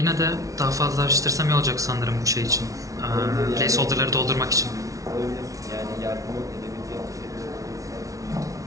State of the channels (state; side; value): late; left; 0.17 ms